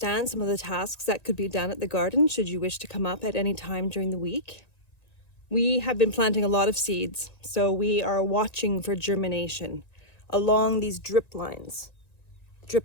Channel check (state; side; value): late; right; 1.9 ms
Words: some of the tasks that could be done at the garden should you wish to come up at any time during the week. We have been planting a lot of seeds, so we are watching for germination along these drip lines